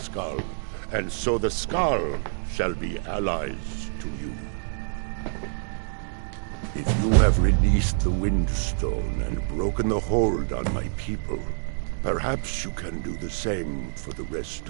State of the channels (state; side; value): silent; left; digital silence